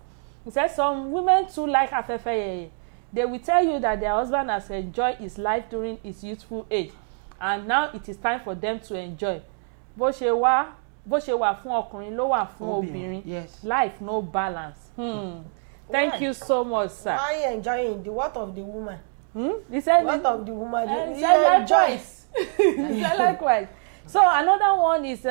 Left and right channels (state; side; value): silent; left; 62 dB below the other